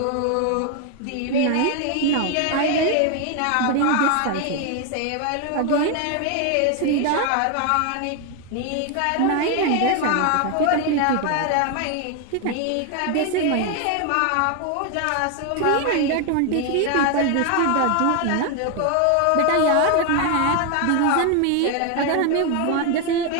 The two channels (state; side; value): different; both; correlation 0.01